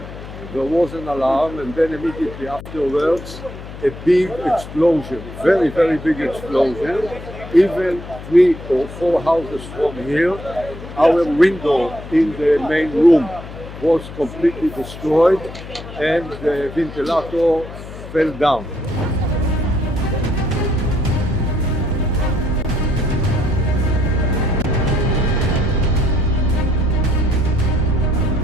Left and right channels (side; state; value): left; noise; hum, 13 dB below the sound